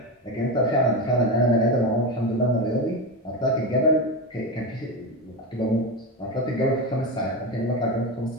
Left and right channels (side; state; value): both; normal; correlation 0.17